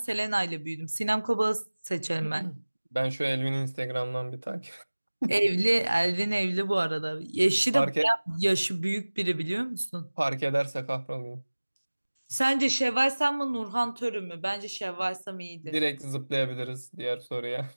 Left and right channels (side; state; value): both; inverted; correlation -1.00